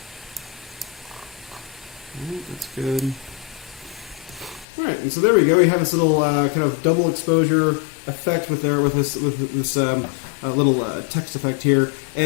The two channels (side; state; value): right; drops out; at 4.7 s